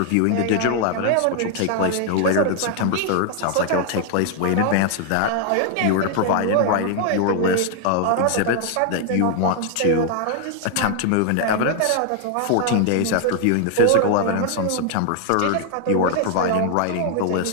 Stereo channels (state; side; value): different; both; correlation 0.00